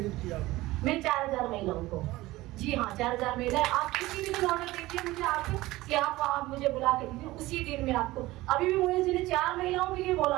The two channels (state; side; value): quieter; left; 18.5 dB